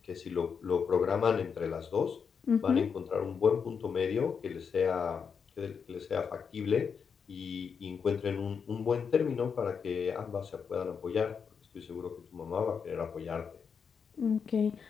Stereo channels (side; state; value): right; quieter; 6.3 dB